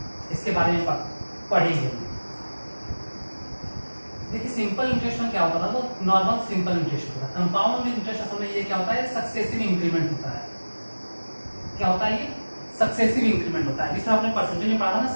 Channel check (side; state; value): both; inverted; correlation -1.00